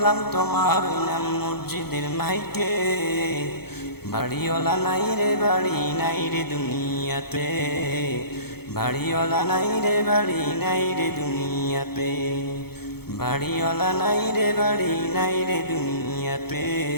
তোমারই নাম মসজিদের মাইকে। বাড়িওয়ালা নাই রে বাড়ি নাই রে দুনিয়াতে, বাড়িওয়ালা নাই রে বাড়ি নাই রে দুনিয়াতে। বাড়িওয়ালা নাই রে বাড়ি নাই রে দুনিয়াতে,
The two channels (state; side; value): late; right; 0.96 ms